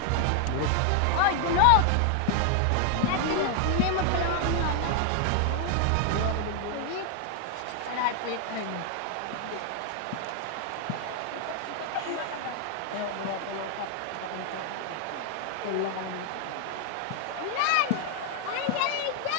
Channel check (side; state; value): both; different; correlation 0.00